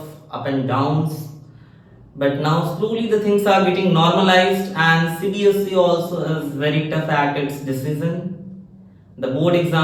up and downs. But now slowly the things are getting normalized, and CBSE also is very tough at its decision. The board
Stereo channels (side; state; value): both; identical; correlation 1.00